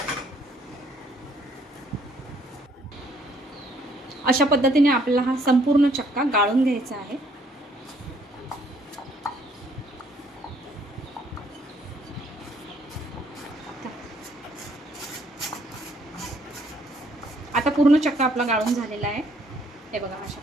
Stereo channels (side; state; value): both; normal; correlation 0.65